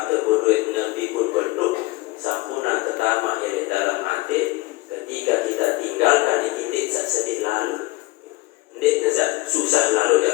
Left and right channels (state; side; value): quieter; right; 20.8 dB